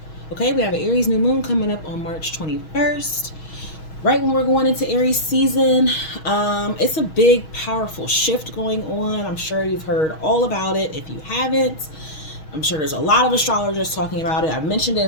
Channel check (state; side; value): late; right; 6.3 ms